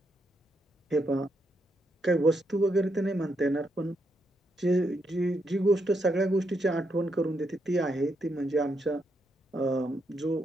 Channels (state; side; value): normal; both; correlation 0.80